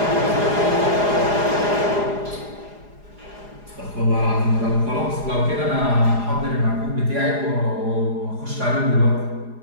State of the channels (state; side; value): late; left; 4.8 ms